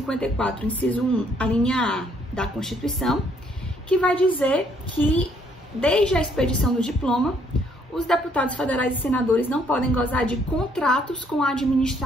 inciso 1, a linha A da Constituição, que vai dizer que, desde a expedição do diploma, os deputados federais e senadores não podem gozar de contratos com a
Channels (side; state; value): both; normal; correlation 0.67